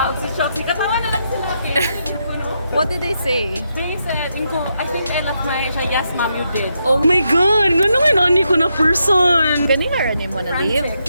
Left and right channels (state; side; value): inverted; both; correlation -0.82